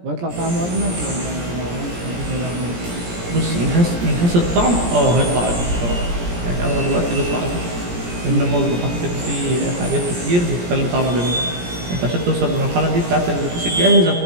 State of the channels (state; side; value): late; left; 17 ms